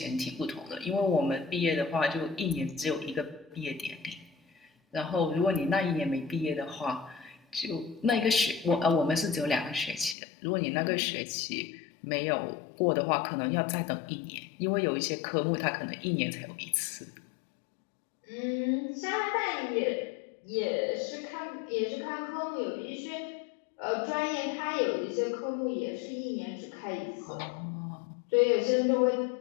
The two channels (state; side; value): drops out; right; at 10.2 s